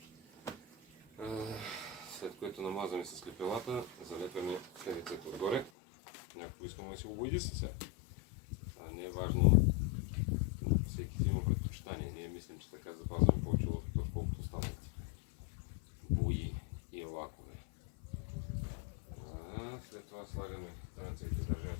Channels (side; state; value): right; drops out; at 5.7 s